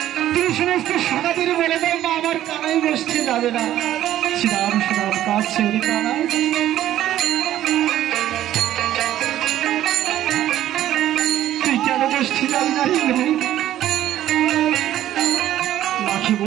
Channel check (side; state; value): left; quieter; 12.7 dB